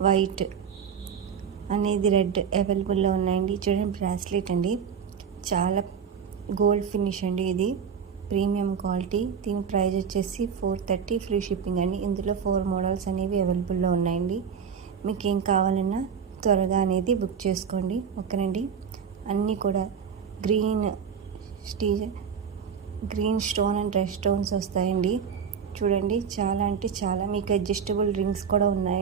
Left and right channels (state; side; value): quieter; left; 7.1 dB